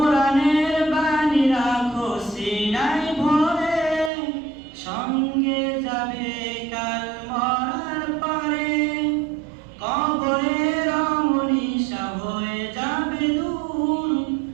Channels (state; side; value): drops out; left; at 4.1 s